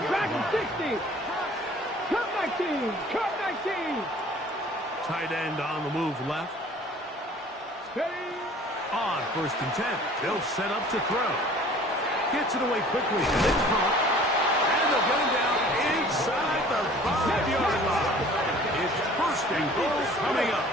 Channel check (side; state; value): both; normal; correlation 0.49